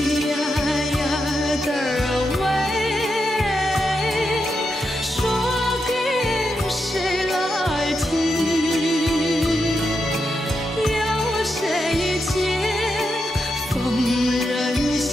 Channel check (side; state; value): both; normal; correlation 0.85